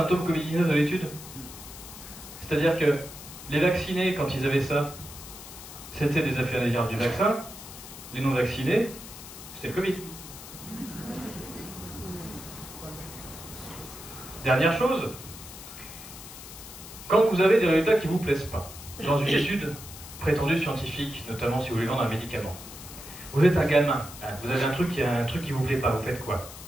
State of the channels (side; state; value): left; noise; hiss, 14 dB below the sound